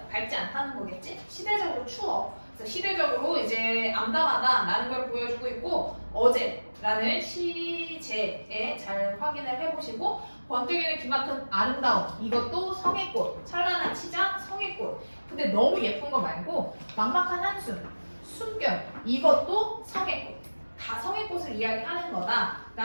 밝지 않다는 거겠지? 시대적으로 추워. 그래서 시대적으로 이제 암담하다라는 걸 보여주고 있고 어제라는 시제에 잘 확인을 해보시고 번뜩이는 기막힌 아름다움 이것도 성의꽃 찬란한 치장 성의꽃 근데 너무 예쁜 거 말고 막막한 한숨 숨결 이것도 성의꽃 다 성의꽃을 이야기하는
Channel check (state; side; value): inverted; both; correlation -1.00